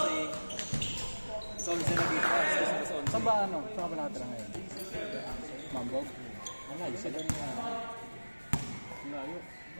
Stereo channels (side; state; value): both; inverted; correlation -1.00